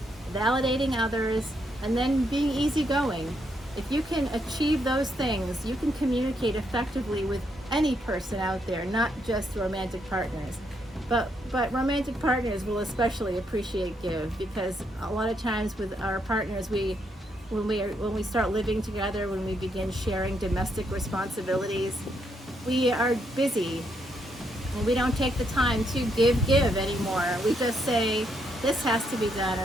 validating others, and then being easygoing. If you can achieve those things, you can communicate effectively with any person out there, not just romantic partners. But romantic partners will especially appreciate give, because a lot of times with our partners, when we start living together, when we begin sharing domestic responsibilities, we are busy and we don't take the time to give anymore. We just say, this has to be done,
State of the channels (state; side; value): normal; both; correlation 0.76